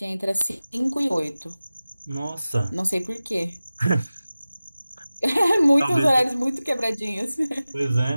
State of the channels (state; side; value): inverted; both; correlation -0.97